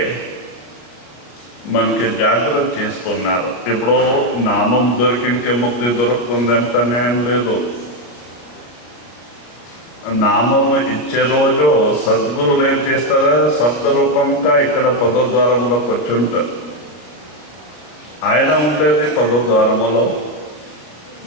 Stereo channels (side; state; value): right; late; 34 ms